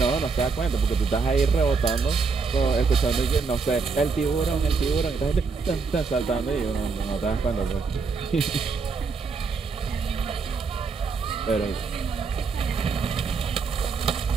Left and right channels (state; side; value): quieter; left; 4.9 dB